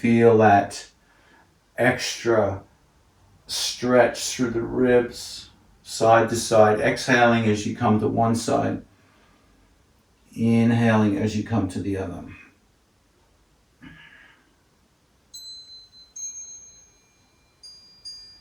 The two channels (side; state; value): both; identical; correlation 1.00